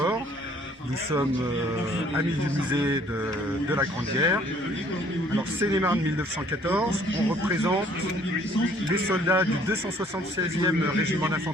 Nous sommes amis du musée de la Grande Guerre. Alors Seine-et-Marne 1914, on représente les soldats du 276e régiment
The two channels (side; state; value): both; normal; correlation 0.59